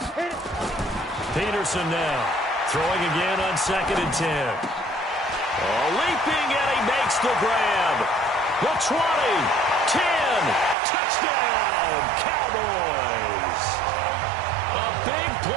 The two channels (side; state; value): left; drops out; at 10.8 s